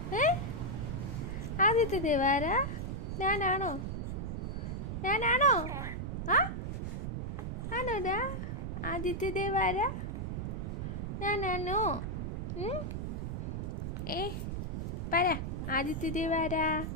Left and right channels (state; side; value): noise; right; rumble, 3 dB below the sound